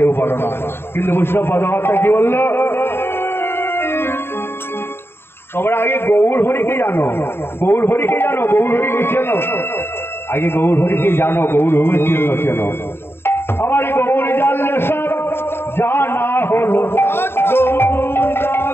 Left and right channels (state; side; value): late; right; 0.11 ms